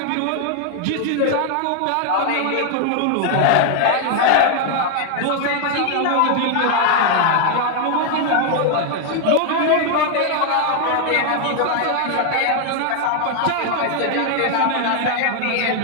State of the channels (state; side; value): different; both; correlation 0.00